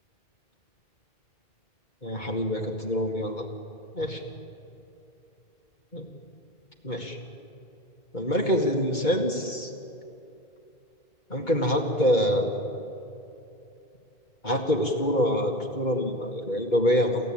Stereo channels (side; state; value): right; late; 2.2 ms